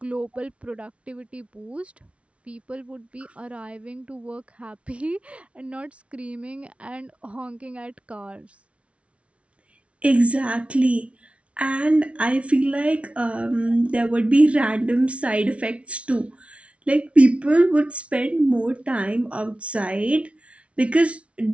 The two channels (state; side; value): late; left; 0.062 ms